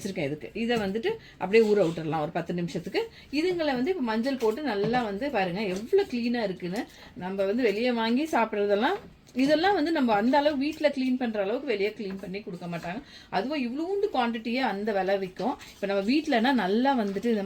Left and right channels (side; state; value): both; identical; correlation 1.00